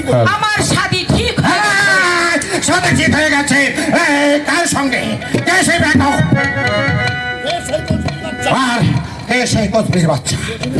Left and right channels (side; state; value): both; identical; correlation 1.00